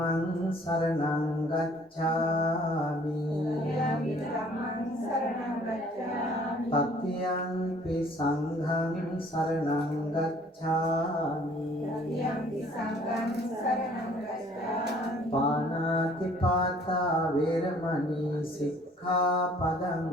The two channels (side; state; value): both; normal; correlation 0.56